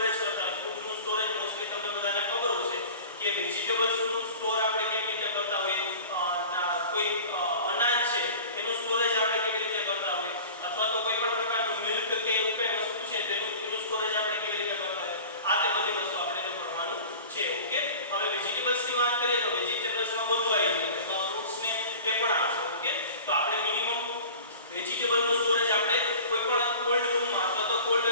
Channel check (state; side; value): inverted; both; correlation -0.39